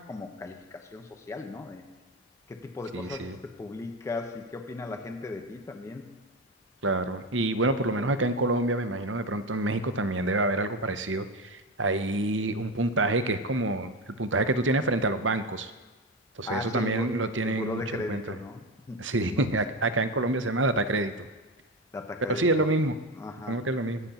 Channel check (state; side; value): normal; both; correlation 0.19